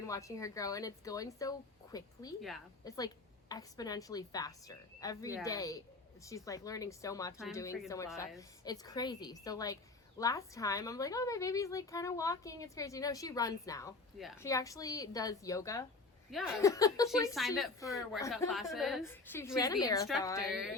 watching her grow, and it's going so quickly. Yeah. It's like exponentially faster. Every day she's like learning so much and doing so much stuff. It's crazy. So like last time I'm like, oh, my baby's like kind of walking. It's crazy. No, she runs now. Yeah. She actually does yoga. Yeah. She signed up for workout classes. She's the instructor.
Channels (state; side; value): quieter; right; 3.6 dB